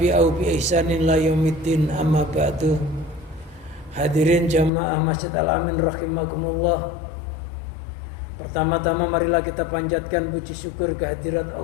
bi ihsanin la yaumiddin, amma ba'du. Hadirin jamaah Masjid Al-Amin rahimakumullah. Pertama-tama marilah kita panjatkan puji syukur kehadirat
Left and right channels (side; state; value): right; drops out; at 4.7 s